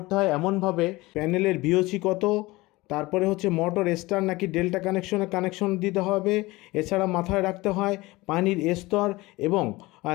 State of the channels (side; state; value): right; quieter; 20.9 dB